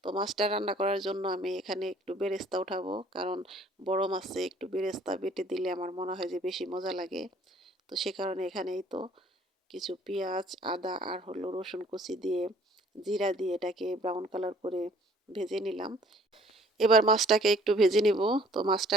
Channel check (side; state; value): both; normal; correlation 0.56